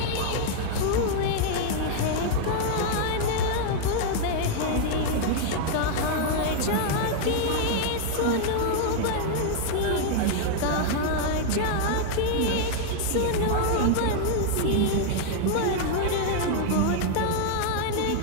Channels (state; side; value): different; both; correlation 0.00